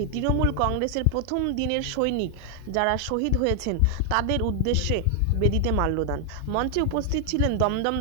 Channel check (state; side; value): different; both; correlation 0.00